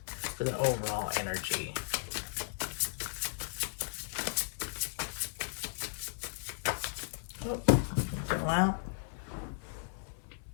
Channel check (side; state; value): right; silent; 54 dB below the other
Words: for the overall energy. Oh, go out.